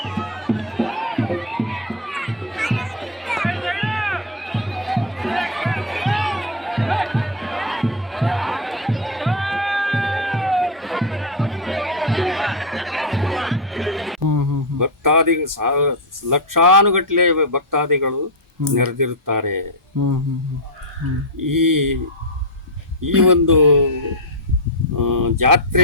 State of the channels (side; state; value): both; normal; correlation 0.04